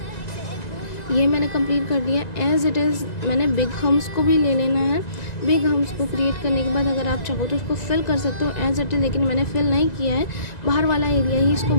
ये मैंने कंप्लीट कर दिया एज इट इज़। मैंने बिग हम्स को भी ले लेना है। बिग हम्स को क्रिएट करने के बाद अगर आप चाहो तो इसको फिल कर सकते हो एज इट इज़, लेकिन मैंने फिल नहीं किया है, बाहर वाला एरिया ही इसको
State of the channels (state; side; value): late; right; 2.0 ms